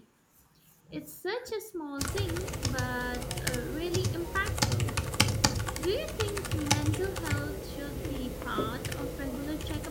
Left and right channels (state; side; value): identical; both; correlation 1.00